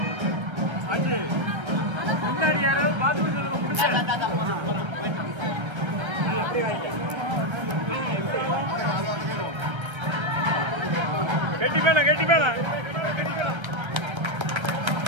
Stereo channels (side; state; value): left; late; 1.3 ms